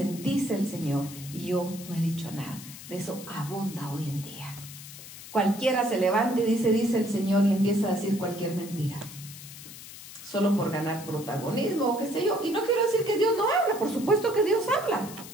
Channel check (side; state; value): left; noise; hiss, 14 dB below the sound